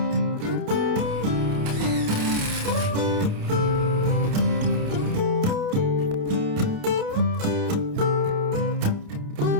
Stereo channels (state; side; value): late; left; 28 ms